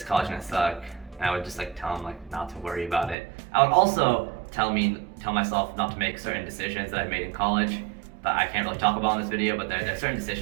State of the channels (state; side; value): drops out; left; at 3.2 s